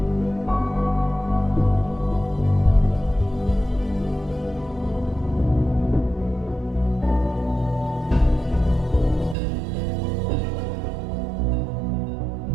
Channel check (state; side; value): drops out; left; at 9.3 s